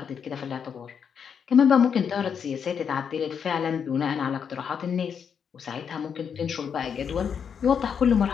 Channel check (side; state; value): right; quieter; 7.2 dB